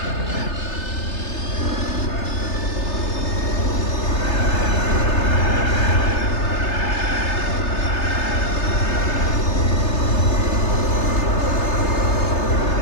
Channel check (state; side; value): late; right; 3.3 ms